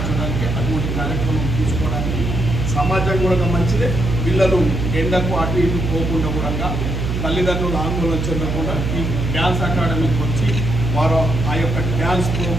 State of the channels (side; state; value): right; noise; hum, 2 dB below the sound